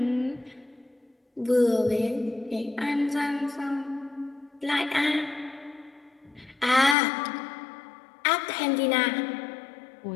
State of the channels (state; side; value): drops out; right; at 7.0 s